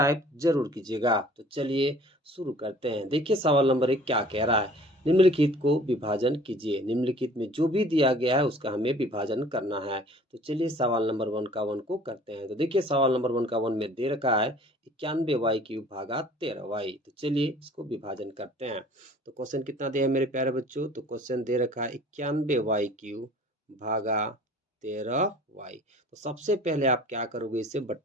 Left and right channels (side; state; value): both; normal; correlation 0.50